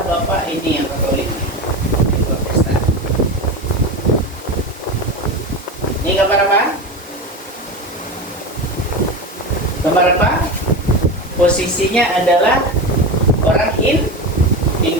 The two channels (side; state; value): both; normal; correlation 0.23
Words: Bapak ini yang Katolik, ini Protestan. Ini gambar apa? Gambar apa? Posisinya adalah orang